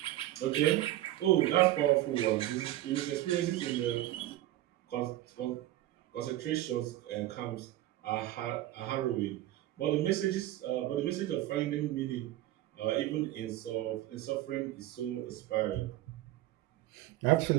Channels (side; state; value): left; quieter; 15.0 dB